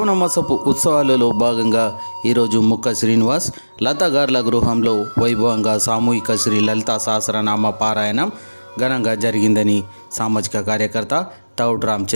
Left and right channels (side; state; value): both; inverted; correlation -1.00